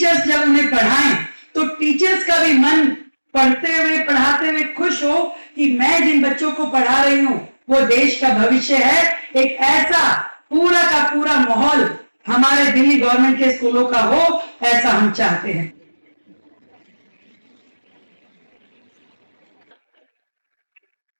जब उन्हें पढ़ाएं तो टीचर्स का भी मन पढ़ते हुए, पढ़ाते हुए खुश हो कि मैं जिन बच्चों को पढ़ा रही हूं वो देश का भविष्य है। एक ऐसा पूरा का पूरा माहौल हमारे दिल्ली गवर्नमेंट के स्कूलों का हो, ऐसा हम चाहते हैं।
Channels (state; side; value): inverted; both; correlation -1.00